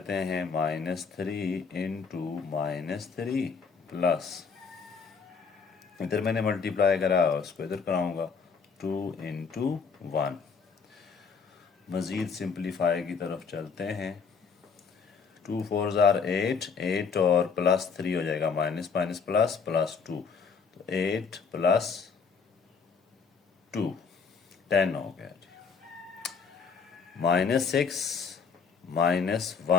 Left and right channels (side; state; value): right; quieter; 5.6 dB